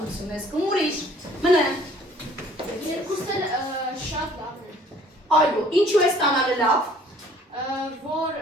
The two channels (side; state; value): both; normal; correlation 0.55